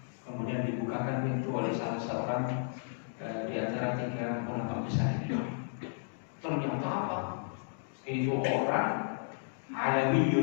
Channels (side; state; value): right; silent; digital silence